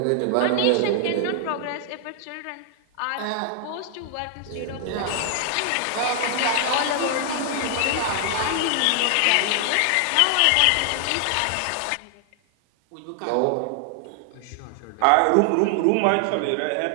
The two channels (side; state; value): both; different; correlation 0.00